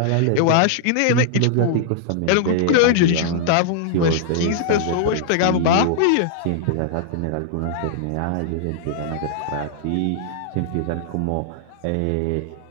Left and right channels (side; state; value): both; different; correlation -0.01